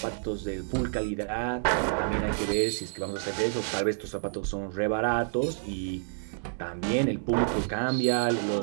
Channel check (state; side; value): silent; left; digital silence